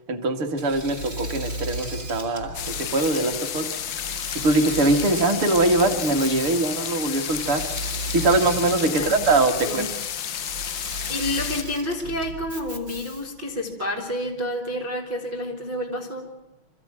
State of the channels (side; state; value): left; late; 6.2 ms